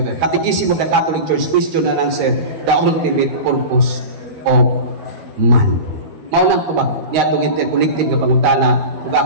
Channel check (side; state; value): left; late; 12 ms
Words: Catechism of the Catholic Church, question and answer, the ultimate purpose of man. Maunang tubag, niya itong interconnected nga pangutana, ug